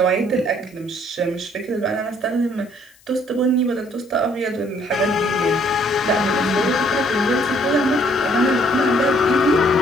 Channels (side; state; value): left; noise; hiss, 29 dB below the sound